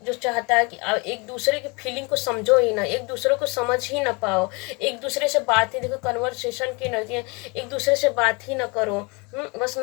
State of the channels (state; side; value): quieter; right; 29.1 dB